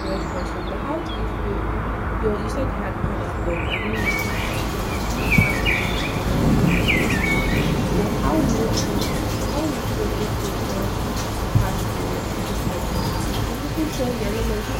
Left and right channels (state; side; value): identical; both; correlation 1.00